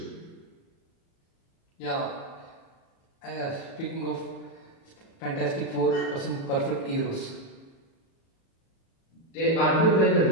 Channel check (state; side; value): late; right; 36 ms